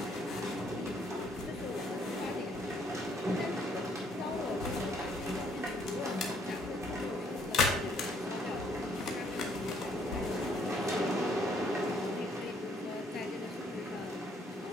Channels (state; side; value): normal; both; correlation 0.66